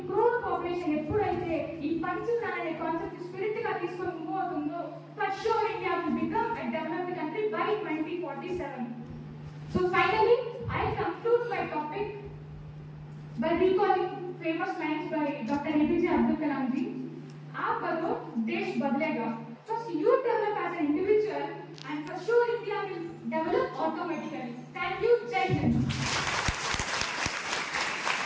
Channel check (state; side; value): identical; both; correlation 1.00